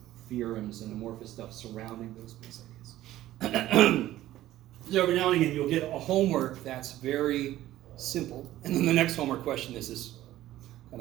theorems and amorphous stuff surrounding those base ideas. So every now and again you'll get a homework that's very simple, and then the next homework question is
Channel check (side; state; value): left; quieter; 14.5 dB